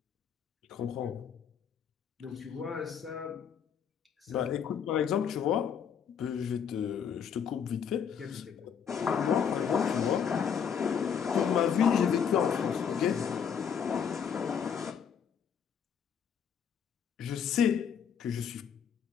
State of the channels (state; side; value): quieter; right; 7.5 dB